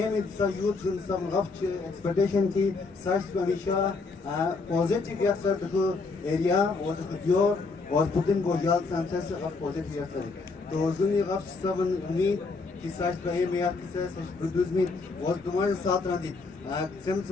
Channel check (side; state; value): right; quieter; 4.1 dB